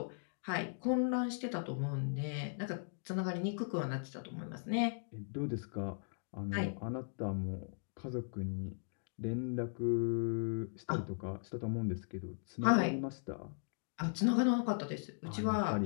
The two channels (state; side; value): silent; right; digital silence